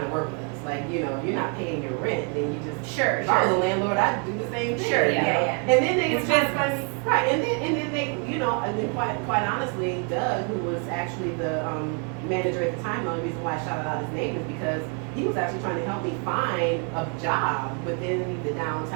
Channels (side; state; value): left; quieter; 37.6 dB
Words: to work with us. Like, you're not paying your rent, then you just if I was a landlord, I'd do the same thing. Sure, yeah. And then they right, and then they, and then quite honestly, Doug, who was actually the manager at the time, the only reason why I shouted out his name is because he was actually trying to help me find a job within the